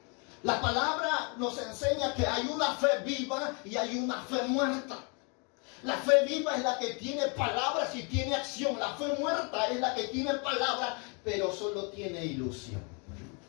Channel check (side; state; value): right; quieter; 34.4 dB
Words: La palabra nos enseña que hay una fe viva y hay una fe muerta. La fe viva es la que tiene palabras y tiene acción. La fe muerta es la que tiene palabras, pero solo tiene ilusión.